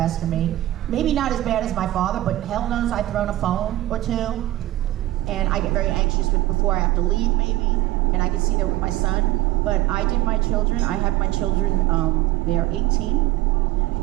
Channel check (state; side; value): quieter; left; 15.8 dB